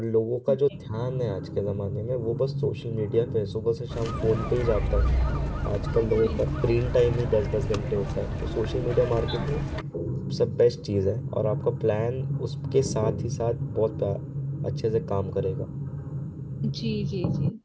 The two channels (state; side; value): identical; both; correlation 1.00